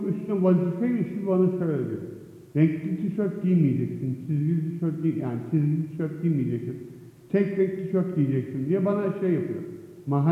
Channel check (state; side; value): identical; both; correlation 1.00